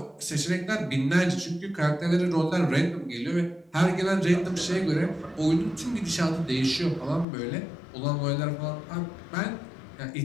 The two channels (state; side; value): drops out; right; at 7.2 s